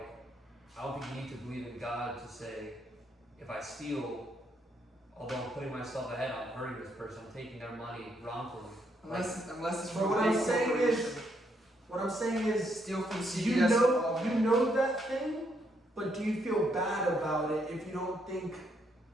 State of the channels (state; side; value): normal; both; correlation 0.75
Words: I don't think you need to believe in God to say, if I steal, although I'm putting myself ahead, I'm hurting this person, I'm taking their money wrongfully. Unless it's But from what a I'm big saying corporation. is, what I'm saying is, Steal from you CVS. know that thing, but do you feel bad about it if you don't think